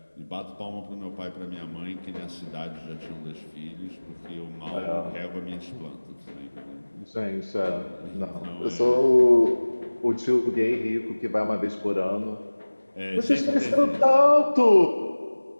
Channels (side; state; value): both; inverted; correlation -1.00